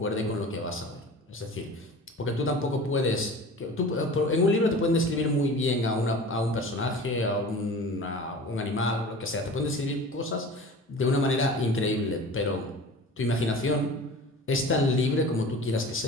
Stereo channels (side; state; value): both; normal; correlation 0.39